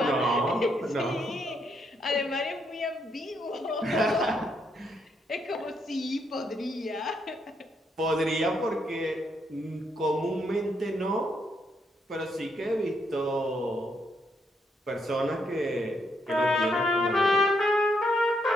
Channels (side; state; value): both; normal; correlation 0.76